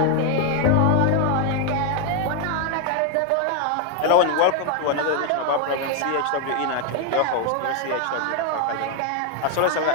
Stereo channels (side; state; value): both; different; correlation 0.01